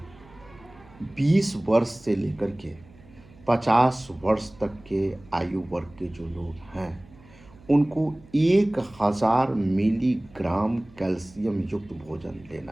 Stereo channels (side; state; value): right; noise; hum, 24 dB below the sound